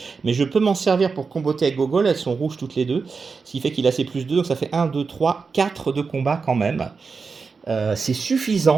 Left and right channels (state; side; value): quieter; left; 4.9 dB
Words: Mais je peux m'en servir pour comboter avec Gogol. Elles sont rouges toutes les deux. Ce qui fait qu'il a ses plus 2. Donc ça fait 1, 2, 3, 4 de combat quand même. C'est